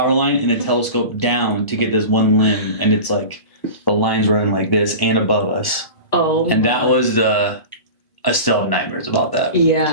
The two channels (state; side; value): late; right; 1.0 ms